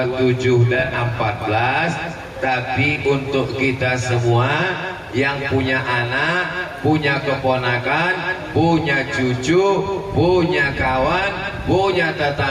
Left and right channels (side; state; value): both; identical; correlation 1.00